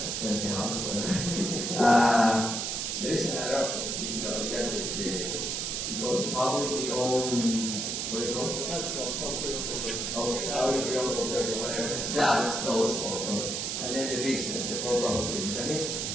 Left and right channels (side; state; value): right; noise; hiss, 2 dB below the sound